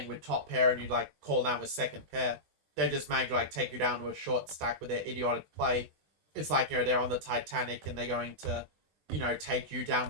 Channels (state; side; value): late; left; 20 ms